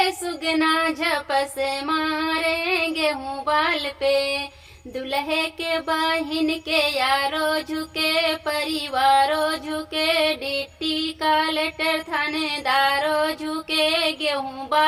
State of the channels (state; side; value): identical; both; correlation 1.00